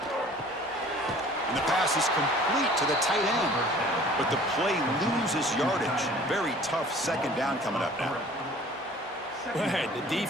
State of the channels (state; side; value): normal; both; correlation 0.50